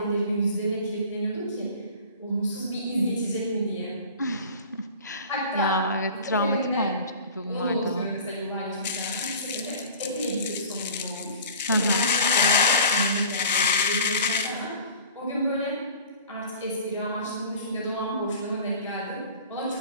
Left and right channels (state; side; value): inverted; both; correlation -0.43